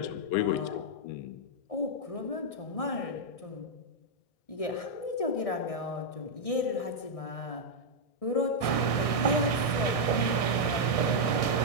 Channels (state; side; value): late; right; 1.6 ms